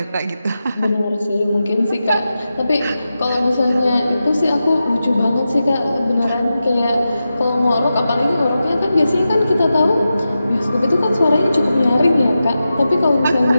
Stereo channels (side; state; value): both; inverted; correlation -0.91